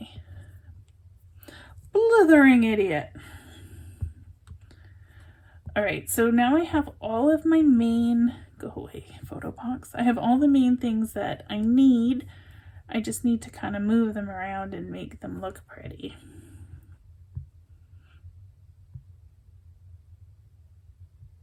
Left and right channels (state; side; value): identical; both; correlation 1.00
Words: Blithering idiot. All right, so now I have all of my main, go away, photo box. I have all the main things that I need. I just need to kind of move them around and make them look pretty.